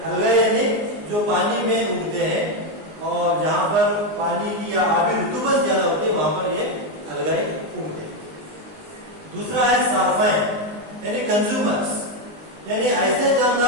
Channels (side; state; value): left; late; 19 ms